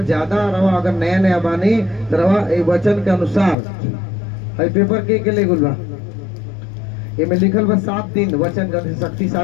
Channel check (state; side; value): drops out; right; at 3.6 s